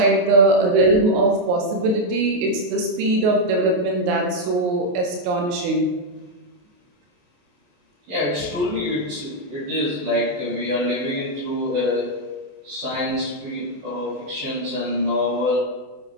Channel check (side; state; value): left; late; 28 ms